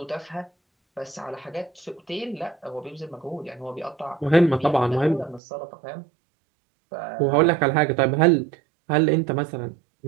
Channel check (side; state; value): left; drops out; at 5.4 s